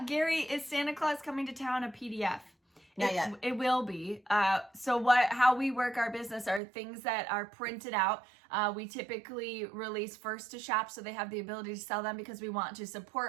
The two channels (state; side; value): drops out; left; at 6.6 s